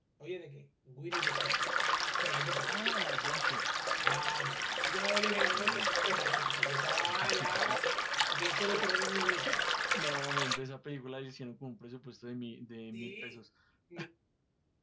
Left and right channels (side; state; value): both; identical; correlation 1.00